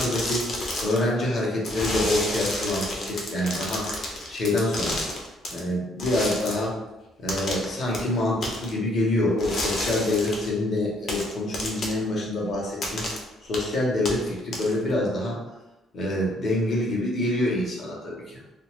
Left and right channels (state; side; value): normal; both; correlation 0.66